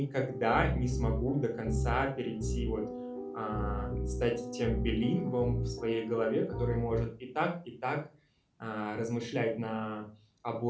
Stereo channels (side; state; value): both; identical; correlation 1.00